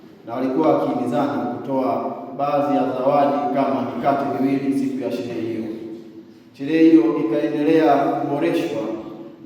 na walikuwa wakihimizana kutoa baadhi ya zawadi kama mikate miwili siku ya sherehe hiyo. Sherehe hiyo ikaendelea kuboreshwa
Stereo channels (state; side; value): identical; both; correlation 1.00